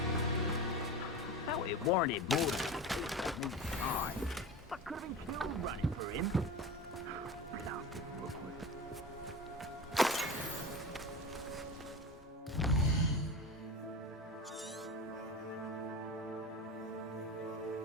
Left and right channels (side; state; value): both; normal; correlation 0.29